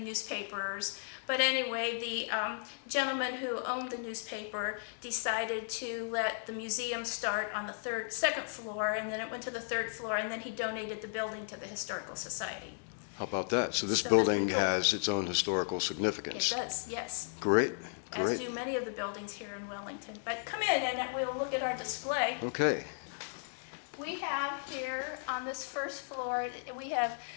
But anyway, the gentleman who owned the newspaper decided to let the museum start on the second floor, and then it went to the third floor, and then he donated the building to the Historical Society. How about that? So this So building that's cool. has its own historical It significance. does, yes. Great, As great. do many of the buildings here in Wellington. But come in and we'll look at our display. Okay. We have here on this first floor, we have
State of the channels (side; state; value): right; silent; digital silence